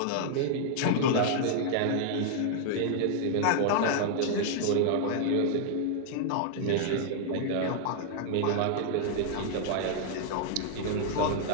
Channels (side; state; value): both; different; correlation 0.00